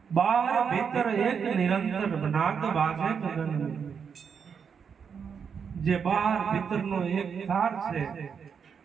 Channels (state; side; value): quieter; left; 6.7 dB